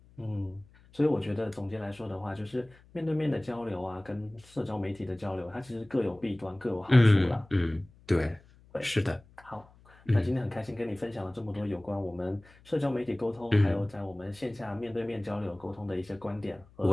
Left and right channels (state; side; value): noise; left; hum, 26 dB below the sound